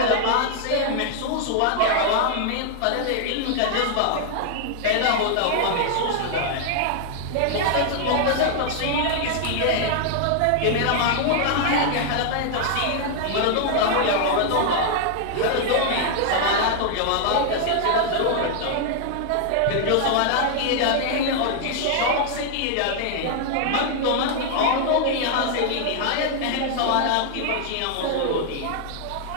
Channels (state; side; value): different; both; correlation 0.00